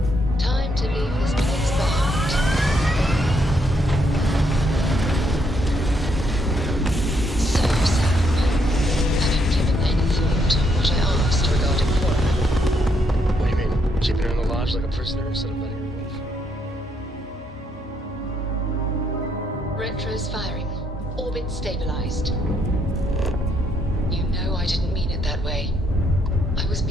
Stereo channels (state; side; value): normal; both; correlation 0.74